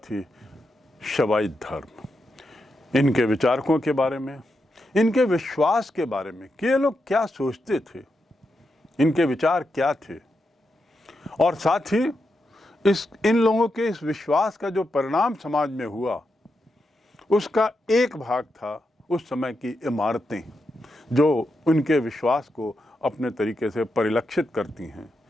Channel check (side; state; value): both; normal; correlation 0.85